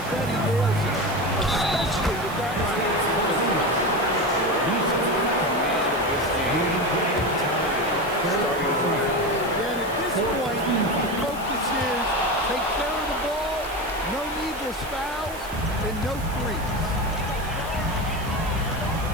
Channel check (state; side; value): noise; right; hiss, 17 dB below the sound